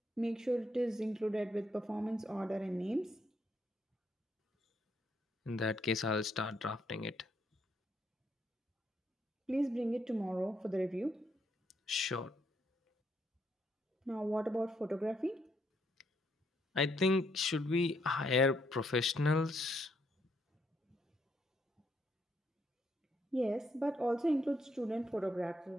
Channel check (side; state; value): both; normal; correlation 0.74